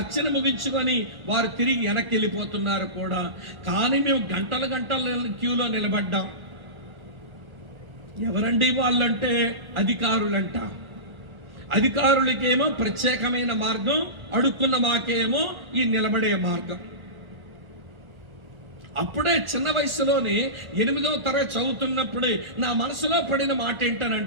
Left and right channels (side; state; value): left; late; 1.3 ms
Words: ముగించుకొని వారు తిరిగి వెనక్కి వెళ్ళిపోతున్నారు కూడా. కానీ మేము గంటల క్యూలో నిలబడ్డాం. ఎవరండి వాళ్ళంటే అధికారులంట. అధికారులకేమో ప్రత్యేకమైన మార్గం, అడుక్కున్న మాకేమో ఈ నిలబడే మార్గం. అప్పుడే చిన్న వయసులోనే 8వ తరగతి చదువుతున్నప్పుడే నా మనసులో పడిన మాట